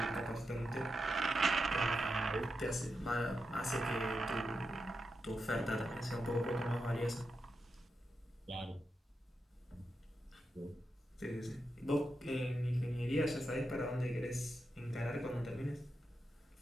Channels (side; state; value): both; normal; correlation 0.87